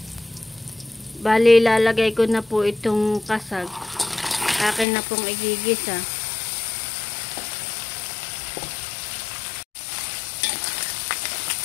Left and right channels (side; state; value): right; drops out; at 4.9 s